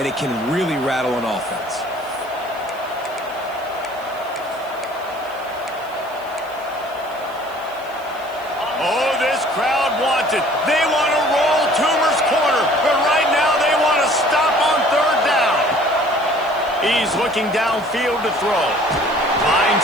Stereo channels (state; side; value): noise; right; hiss, 24 dB below the sound